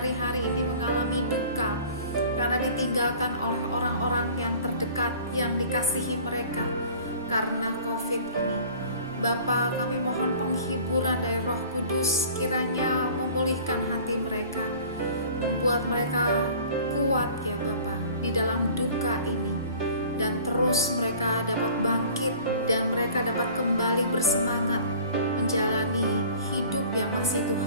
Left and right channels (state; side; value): inverted; both; correlation -0.47